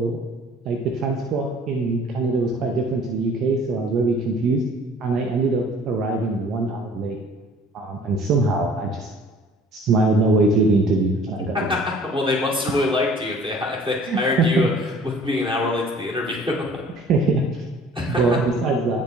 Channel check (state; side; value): normal; both; correlation 0.52